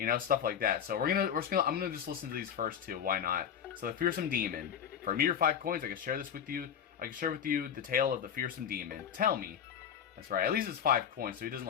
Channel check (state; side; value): quieter; right; 8.4 dB